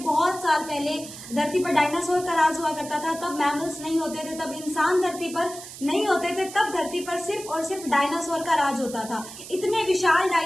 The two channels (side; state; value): right; noise; hiss, 13 dB below the sound